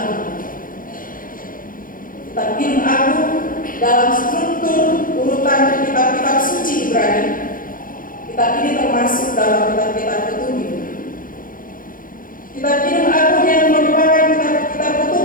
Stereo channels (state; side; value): late; right; 0.40 ms